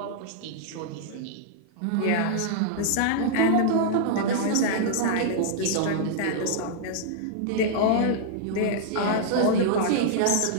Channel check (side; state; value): both; different; correlation -0.01